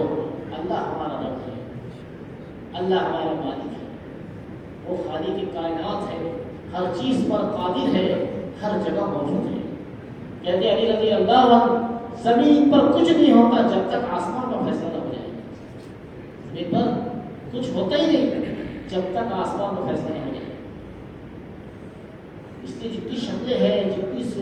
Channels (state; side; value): identical; both; correlation 1.00